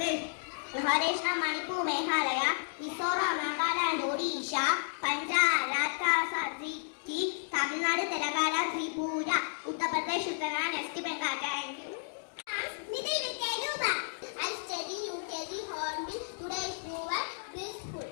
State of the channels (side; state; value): right; silent; digital silence